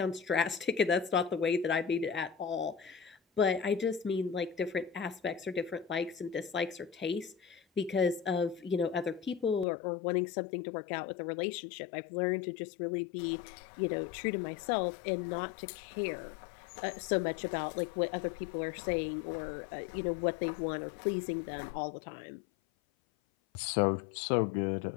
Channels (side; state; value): right; drops out; at 9.7 s